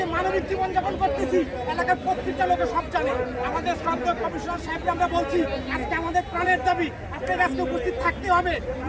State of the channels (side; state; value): both; identical; correlation 1.00